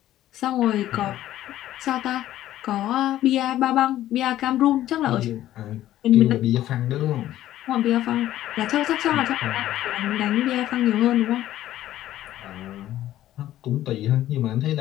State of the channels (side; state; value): right; quieter; 13.4 dB